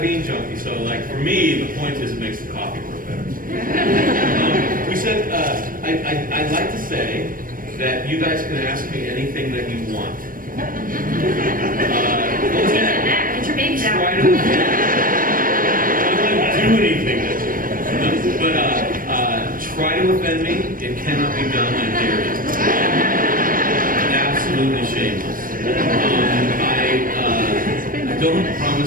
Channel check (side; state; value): left; late; 0.40 ms